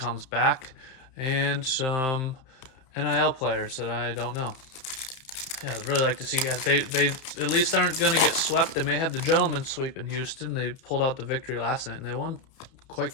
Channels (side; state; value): right; late; 31 ms